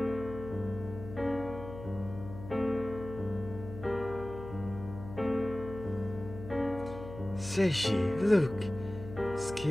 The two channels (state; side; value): noise; left; hum, 12 dB below the sound